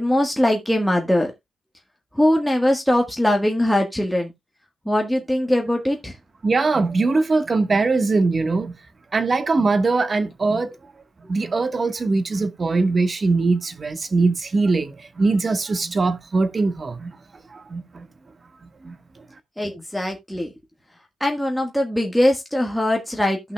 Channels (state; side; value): normal; both; correlation 0.94